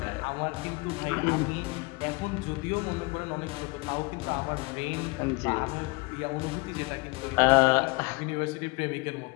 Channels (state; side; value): quieter; right; 27.4 dB